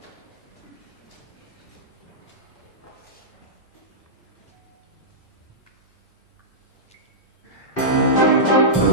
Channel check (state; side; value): normal; both; correlation -0.14